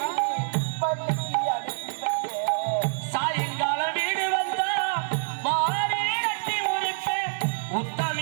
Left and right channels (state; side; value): silent; left; 60 dB below the other